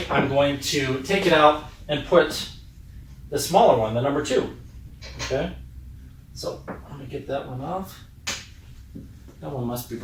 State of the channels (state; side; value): identical; both; correlation 1.00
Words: I'm going to take it out and put the smaller one, the number 2. Okay? So let me get that one off. That one must be